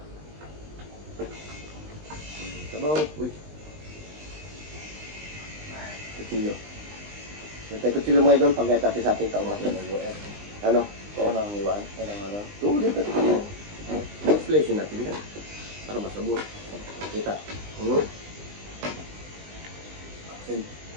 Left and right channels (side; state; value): left; late; 20 ms